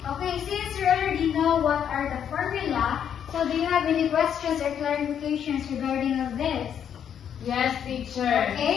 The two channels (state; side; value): quieter; right; 8.7 dB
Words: since you already know what are the formula, so do you have any questions or clarifications regarding of this? Yes, teacher.